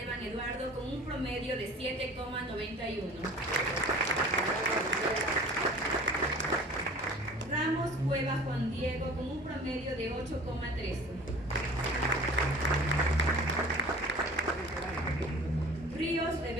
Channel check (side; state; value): both; normal; correlation 0.44